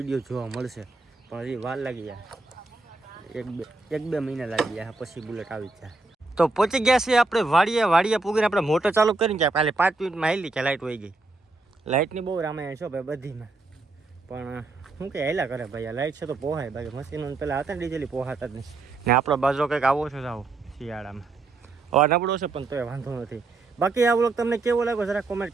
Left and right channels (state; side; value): quieter; left; 3.5 dB